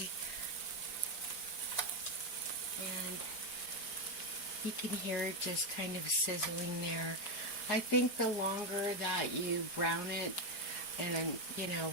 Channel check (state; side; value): late; right; 4.9 ms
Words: And you can hear it just kind of sizzling there. I think the longer that you brown it and,